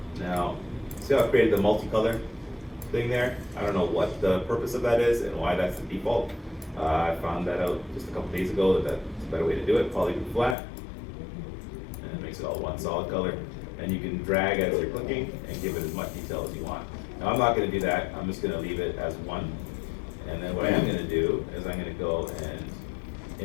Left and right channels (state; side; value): drops out; right; at 10.6 s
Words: Now, see how I created the multicolor thing there? I don't know what the purpose of that is and why that's the default. I found that out just a couple days ago that that's a better way to do it. Polygroup flat, and it makes it all one solid color. And you can drag as you're clicking and give it as much detail as you want. Now I'm not going to do that. I'm just going to leave it as one. And then what I am going to do is I'm going to go